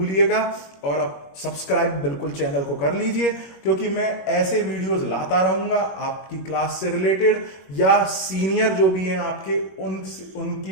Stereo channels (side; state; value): right; late; 21 ms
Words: और अब सब्सक्राइब बिल्कुल चैनल को कर लीजिए, क्योंकि मैं ऐसे वीडियोस लाता रहूंगा आपकी क्लास से रिलेटेड, या सीनियर जो भी हैं आपके